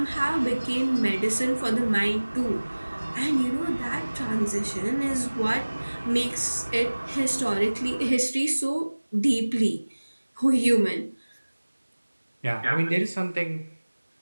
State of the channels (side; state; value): both; inverted; correlation -1.00